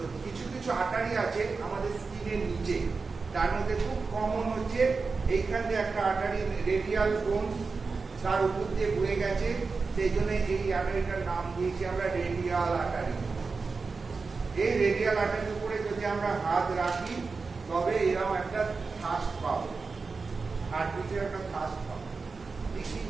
কিছু কিছু আর্টারি আছে আমাদের স্কিনের নিচে, তার মধ্যে খুব কমন হচ্ছে এইখান দিয়ে একটা আর্টারি রেডিয়াল বোন, তার উপর দিয়ে বয়ে গেছে, সেই জন্য এই আর্টারিটার নাম দিয়েছি আমরা রেডিয়াল আর্টারি। এই রেডিয়াল আর্টারির উপরে যদি আমরা হাত রাখি তবে এরকম একটা থাস্ট পাবো, হার্টবিটের একটা থাস্ট পাবো। দেখি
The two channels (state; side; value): quieter; left; 4.4 dB